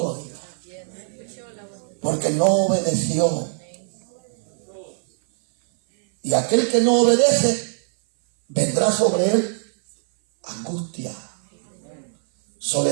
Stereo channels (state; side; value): silent; left; 59 dB below the other